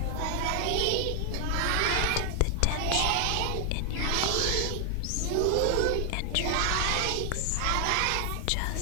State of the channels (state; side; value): different; both; correlation 0.00